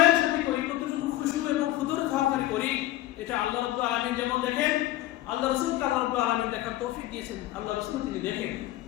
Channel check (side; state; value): right; quieter; 15.6 dB